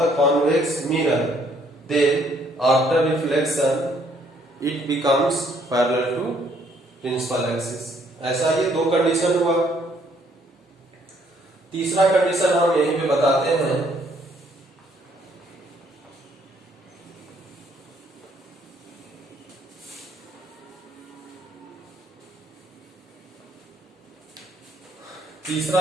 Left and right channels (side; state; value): both; normal; correlation 0.66